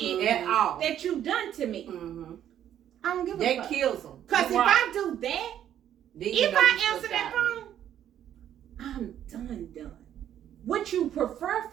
at all. that you done to me. Mhm. I don't give a That fuck. kills them. Cause if I do that, if I answer that phone, I'm done. What you prefer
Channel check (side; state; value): left; quieter; 10.6 dB